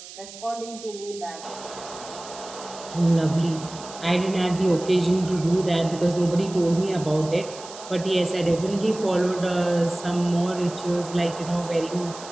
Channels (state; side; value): noise; right; hiss, 15 dB below the sound